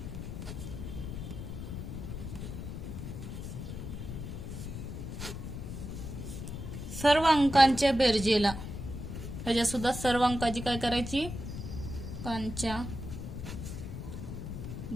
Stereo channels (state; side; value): noise; left; rumble, 7 dB below the sound